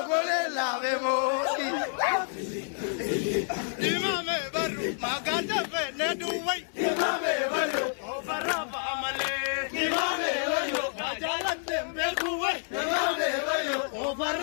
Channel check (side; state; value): right; silent; 59 dB below the other